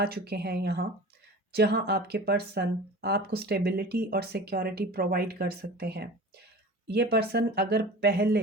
चुके हैं यहाँ, जहाँ आपके पर्सन आपको स्टेबिलिटी और सिक्योरिटी प्रोवाइड कर सकते हैं। ये पर्सन अगर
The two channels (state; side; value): normal; both; correlation 0.37